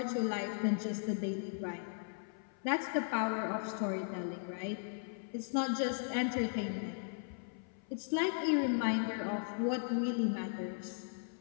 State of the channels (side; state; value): right; silent; 53 dB below the other